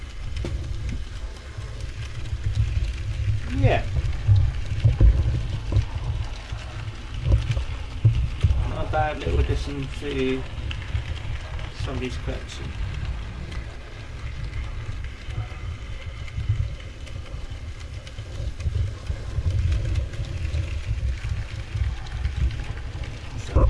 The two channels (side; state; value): both; identical; correlation 1.00